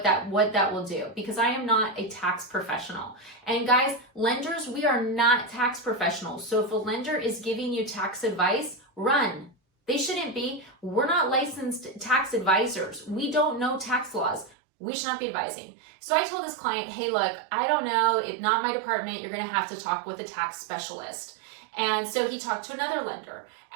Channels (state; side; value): drops out; left; at 14.6 s